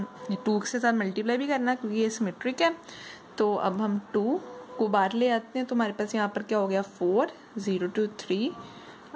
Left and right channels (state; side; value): identical; both; correlation 1.00